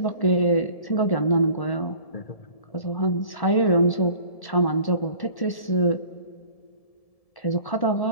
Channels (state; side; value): late; right; 1.7 ms